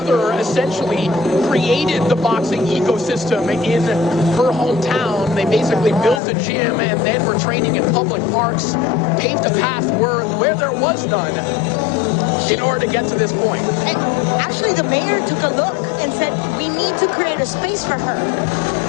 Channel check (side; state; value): right; drops out; at 6.2 s